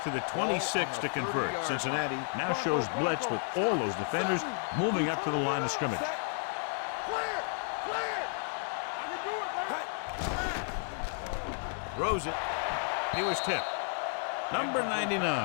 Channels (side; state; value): right; silent; 56 dB below the other